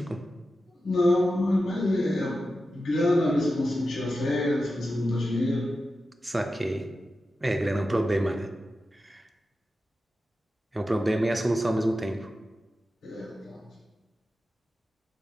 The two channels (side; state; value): both; normal; correlation 0.91